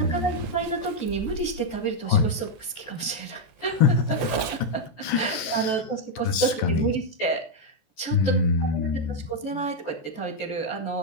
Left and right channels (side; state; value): right; late; 14 ms